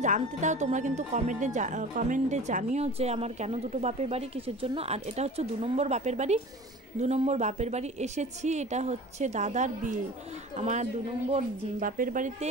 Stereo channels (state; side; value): normal; both; correlation 0.39